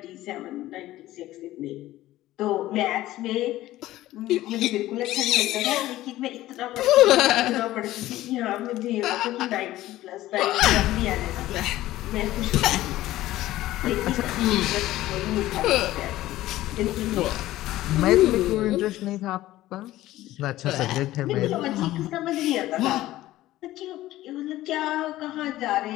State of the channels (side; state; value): right; quieter; 15.6 dB